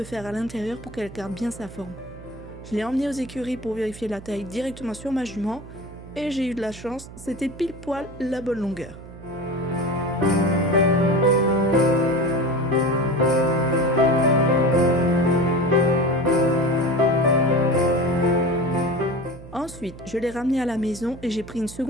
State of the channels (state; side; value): noise; right; hum, 16 dB below the sound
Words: fer à l'intérieur pour qu'elle garde bien sa forme. Je l'ai emmenée aux écuries pour vérifier la taille directement sur ma jument et j'ai eu de la chance, c'était pile poil la bonne longueur. Ensuite, je l'ai ramenée à la maison et j'ai pris une